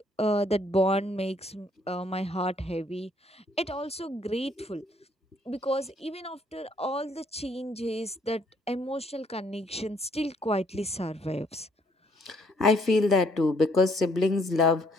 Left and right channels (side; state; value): both; normal; correlation 0.66